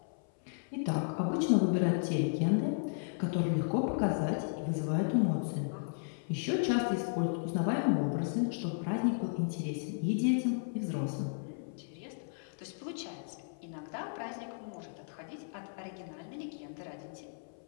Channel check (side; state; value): right; silent; 55 dB below the other